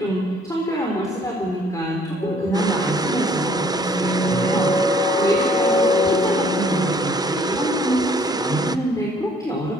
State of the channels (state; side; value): normal; both; correlation 0.60